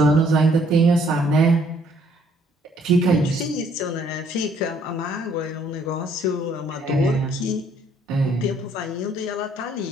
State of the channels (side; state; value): both; normal; correlation 0.64